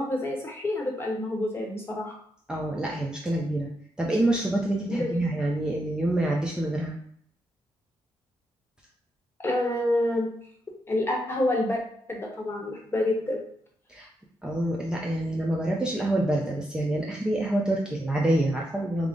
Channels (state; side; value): normal; both; correlation 0.83